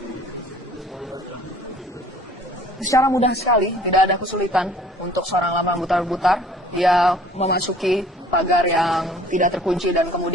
Secara mudah sekali, tidak ada kesulitan untuk seorang Ramlan Butar-Butar. Dia memasuki pagar yang tidak terkunci dan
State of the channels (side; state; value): both; normal; correlation 0.52